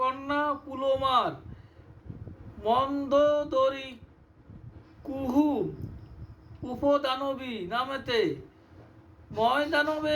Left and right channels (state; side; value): identical; both; correlation 1.00